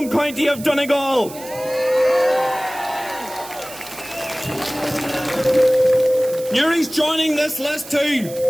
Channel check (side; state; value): right; noise; hiss, 15 dB below the sound